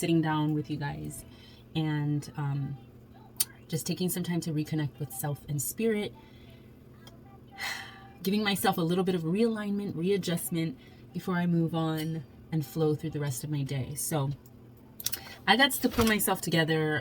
down with you guys and just taking some time to reconnect with self and spirit, giving myself a little bit of realignment, readjustment before I move on and flow through the rest of my day. So I got to pull myself together.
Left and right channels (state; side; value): identical; both; correlation 1.00